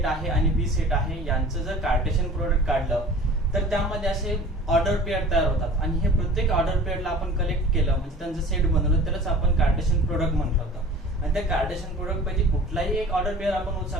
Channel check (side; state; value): both; normal; correlation 0.43